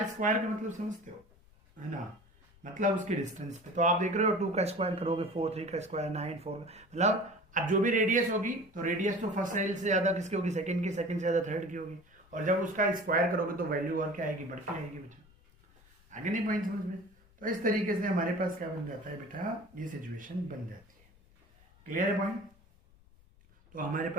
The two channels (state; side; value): noise; left; rumble, 28 dB below the sound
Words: का मतलब समझते हो, है ना, मतलब उसके डिस्टेंस पे। तो आप देख रहे हो 2 का स्क्वायर करोगे 4, 3 का स्क्वायर 9, 4 मतलब अब जो भी रेडियस होगी तो रेडियस तो फर्स्ट सेल से ज्यादा किसकी होगी, सेकंड की, सेकंड से ज्यादा थर्ड की होगी, और जब उसका स्क्वायर करोगे तो वैल्यू और क्या आएगी, बढ़ती आएगी बेटा। आगे नहीं पॉइंट समझ में। तो इस तरीके से हमारे पास क्या बन जाता है बेटा, ये सिचुएशन बन जाती है। क्लियर है पॉइंट, तो हमारे